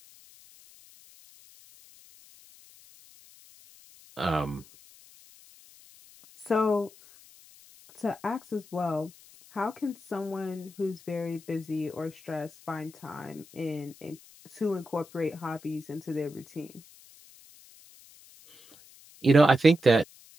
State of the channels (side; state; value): left; noise; hiss, 23 dB below the sound